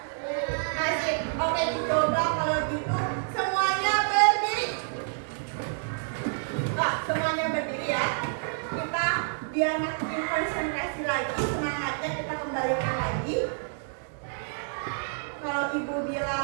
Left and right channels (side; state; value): left; silent; digital silence